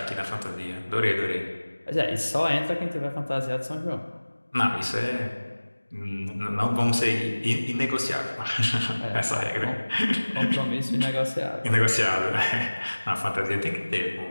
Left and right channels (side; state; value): both; inverted; correlation -1.00